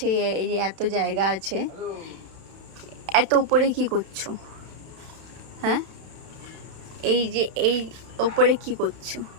এই যে এত জায়গা আছে, এত উপরে কি করছো? হ্যাঁ, এই যে এই উপরে কি করছো?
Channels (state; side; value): late; left; 31 ms